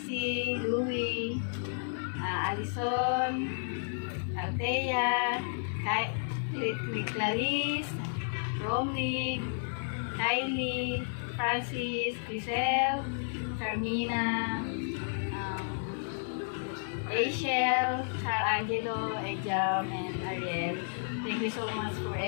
Louie, Alison, Althea, Clarice, Romney, Kylie, Francis, Grisel, Carmina, Rachel, Angelo, Ejam, and Ariel. Thank you so much for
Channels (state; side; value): silent; right; digital silence